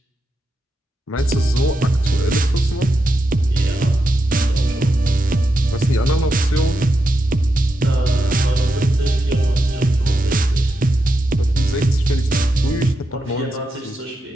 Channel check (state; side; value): normal; both; correlation 0.86